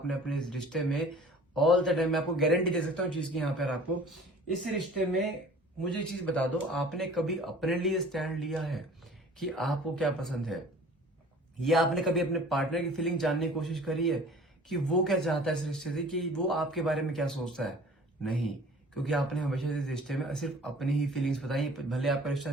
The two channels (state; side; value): normal; both; correlation 0.47